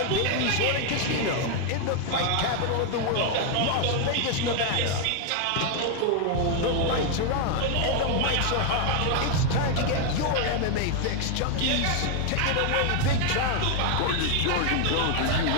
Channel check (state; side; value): different; both; correlation 0.00